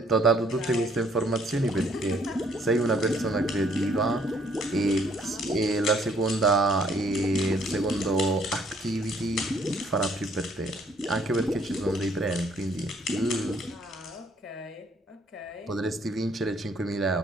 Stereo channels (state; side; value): normal; both; correlation 0.64